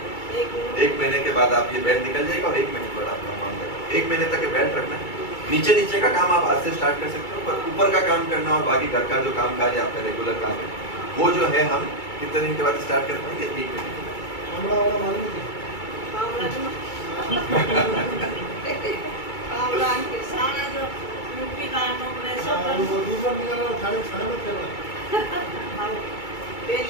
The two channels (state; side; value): late; right; 2.3 ms